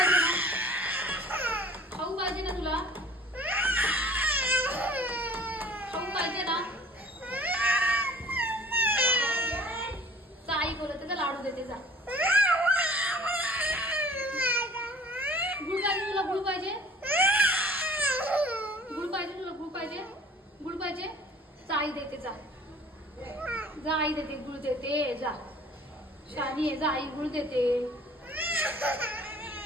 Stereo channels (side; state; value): both; normal; correlation 0.49